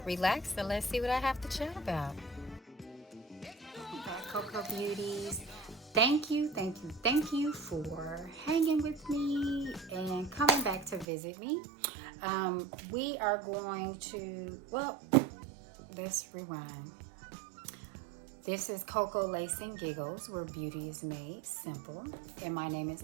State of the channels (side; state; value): left; drops out; at 11.1 s